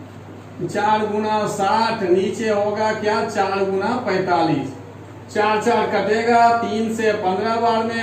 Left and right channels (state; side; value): identical; both; correlation 1.00